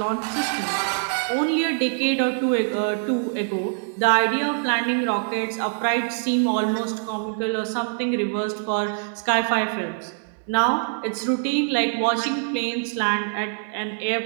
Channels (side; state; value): left; silent; digital silence